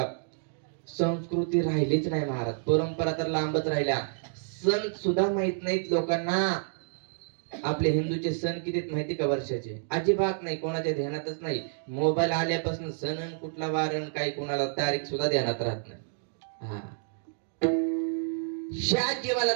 संस्कृती राहिलीच नाही महाराज. परंपरा तर लांबच राहिल्या. सण सुद्धा माहित नाहीत लोकांना. आपले हिंदूचे सण किती माहिती का वर्षाचे? अजिबात नाही, कोणाच्या ध्यानातच नाही. मोबाईल आल्यापासून सण कुठला वारण काही कोणाला तारीख सुद्धा ध्यानात राहत नाही. हा, ह्या जीवाला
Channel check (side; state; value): left; silent; digital silence